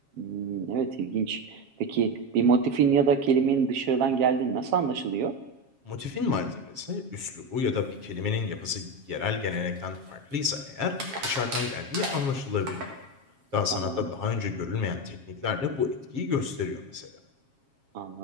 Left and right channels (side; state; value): left; late; 7.4 ms